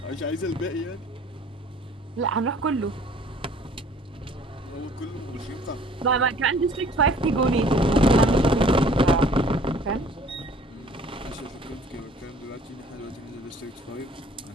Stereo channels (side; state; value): both; normal; correlation 0.52